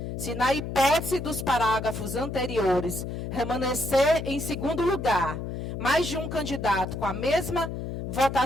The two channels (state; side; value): noise; left; hum, 6 dB below the sound